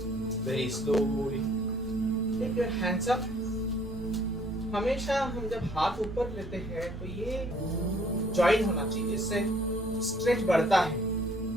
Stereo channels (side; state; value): both; normal; correlation 0.60